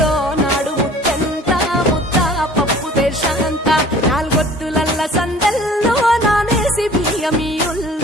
నాడు ముత్తెంత ముద్ద పప్పు దేశంత నాలుగొత్తులల్ల సందెల్లో నానేసి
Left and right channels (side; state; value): both; normal; correlation 0.48